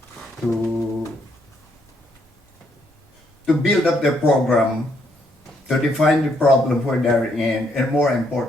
to, to build up their program, to define the problem where they're in, and more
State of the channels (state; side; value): normal; both; correlation 0.73